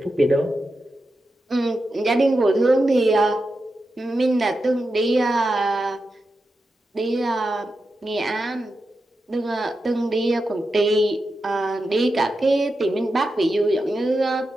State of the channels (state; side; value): normal; both; correlation 0.89